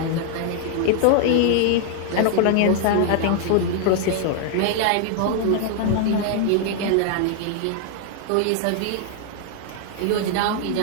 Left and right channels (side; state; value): both; different; correlation 0.00